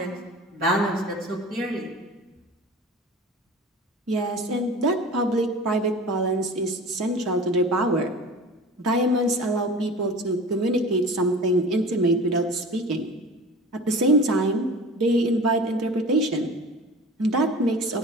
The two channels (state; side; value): normal; both; correlation 0.38